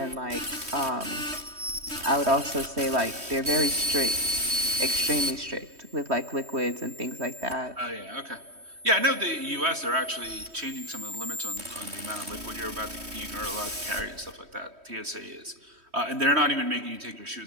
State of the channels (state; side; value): late; left; 3.1 ms